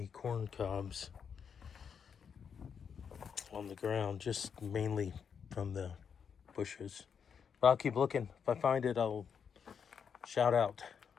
corn cobs on the ground, just mainly from the bushes. But I'll keep looking. If I find it, I'll shout out.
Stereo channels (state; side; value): quieter; right; 6.9 dB